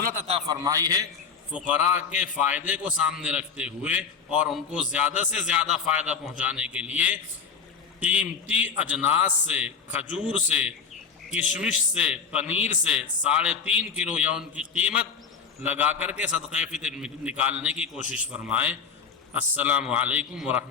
عطا فرمائی ہے، فقراء کے فائدے کو سامنے رکھتے ہوئے اور ان کو زیادہ سے زیادہ فائدہ پہنچانے کے لیے قیمتی اجناس سے، کھجور سے، کشمش سے، پنیر سے 3.5 کلو یا ان کی قیمت لگا کر کے صدقہ فطر نکالنے کی کوشش فرمائیں۔ السلام علیکم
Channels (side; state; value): right; quieter; 6.0 dB